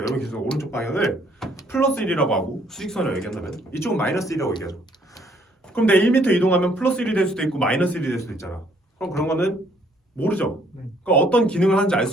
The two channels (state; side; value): normal; both; correlation 0.65